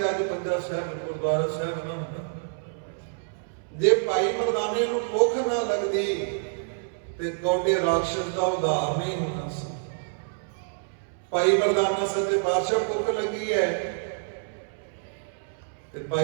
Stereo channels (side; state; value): left; silent; 60 dB below the other